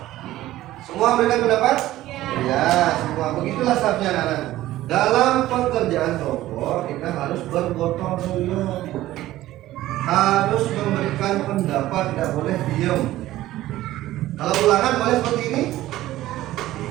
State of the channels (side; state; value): left; quieter; 15.3 dB